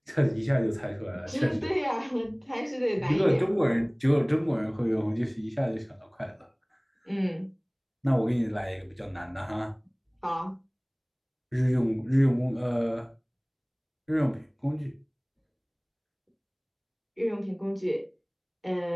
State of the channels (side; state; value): both; identical; correlation 1.00